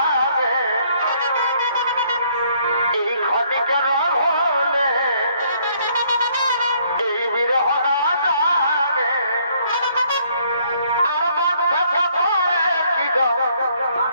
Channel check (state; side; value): inverted; both; correlation -0.66